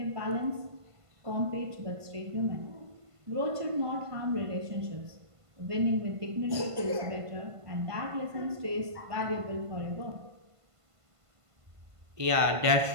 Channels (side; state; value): left; late; 1.5 ms